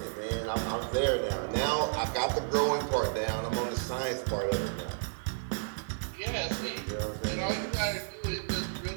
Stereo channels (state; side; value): silent; left; 57 dB below the other